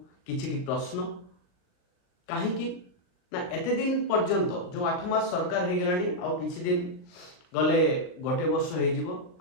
किछि प्रश्न कहीं ना एते दिन पर्यंत जो 8 मास सरकार हो गलानी आउ किछि दिन गले गोटे वर्ष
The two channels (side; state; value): right; late; 39 ms